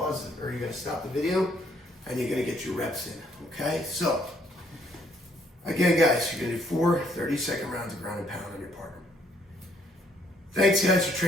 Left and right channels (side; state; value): both; normal; correlation 0.67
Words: it, or you're going to stop the video, and you're going to get your reps in. Okay? So, again, guys, you're going to do 4 30-second rounds of ground and pound on your partner. Thanks, guys, for